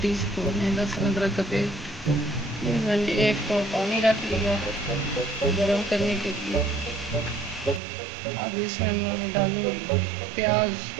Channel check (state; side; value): drops out; left; at 7.8 s